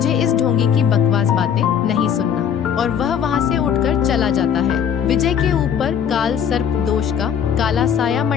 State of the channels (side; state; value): right; quieter; 8.2 dB